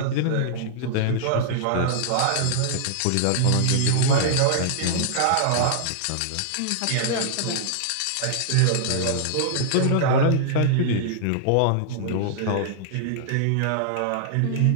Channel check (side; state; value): both; different; correlation -0.01